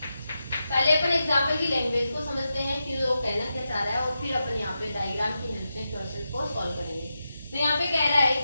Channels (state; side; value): inverted; both; correlation -0.89